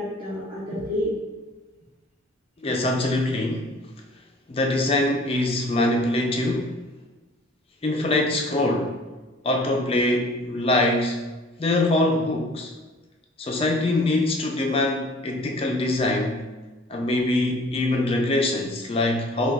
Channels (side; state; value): both; normal; correlation 0.50